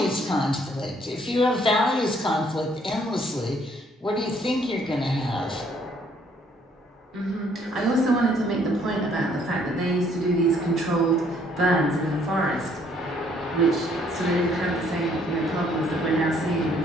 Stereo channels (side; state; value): both; normal; correlation 0.64